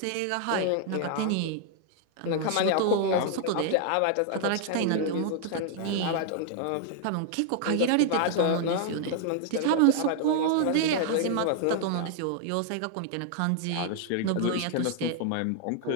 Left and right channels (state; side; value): different; both; correlation 0.00